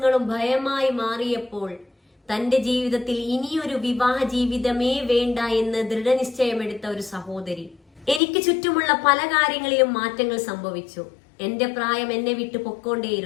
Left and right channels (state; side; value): drops out; right; at 8.2 s